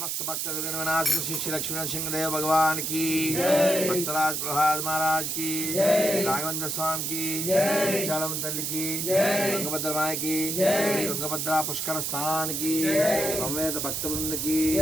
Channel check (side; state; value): right; noise; hiss, 1 dB below the sound